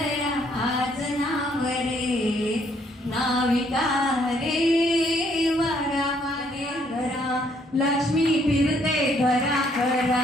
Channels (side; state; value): both; normal; correlation 0.68